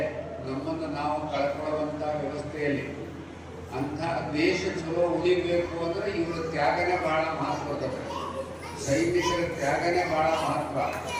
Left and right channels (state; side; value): identical; both; correlation 1.00